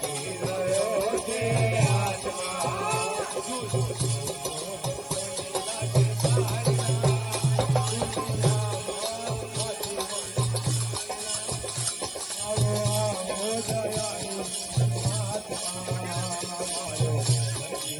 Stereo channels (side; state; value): left; noise; hiss, 24 dB below the sound